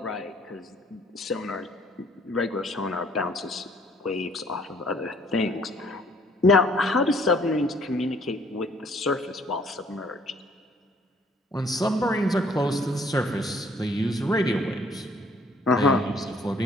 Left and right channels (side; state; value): both; normal; correlation 0.61